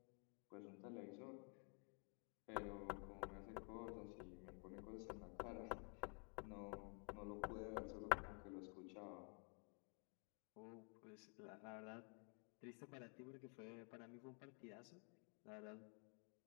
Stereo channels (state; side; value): quieter; right; 38.9 dB